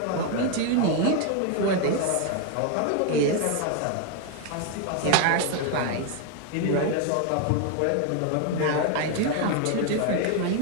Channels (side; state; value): both; different; correlation 0.01